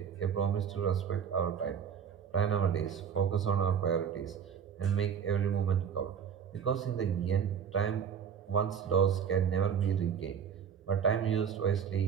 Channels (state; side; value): quieter; left; 7.6 dB